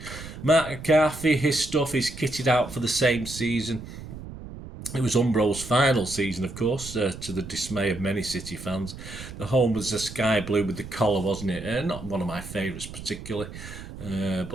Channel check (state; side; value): noise; right; rumble, 12 dB below the sound